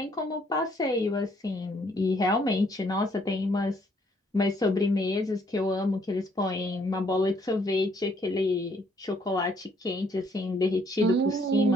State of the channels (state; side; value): normal; both; correlation 0.67